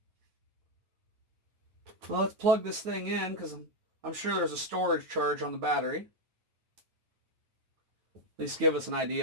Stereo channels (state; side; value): late; left; 9.4 ms